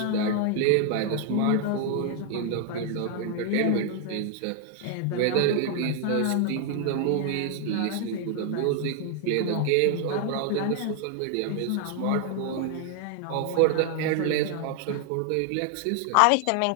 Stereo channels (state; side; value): different; both; correlation 0.00